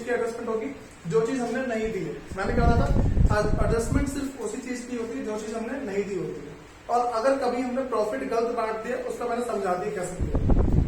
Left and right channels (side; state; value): both; identical; correlation 1.00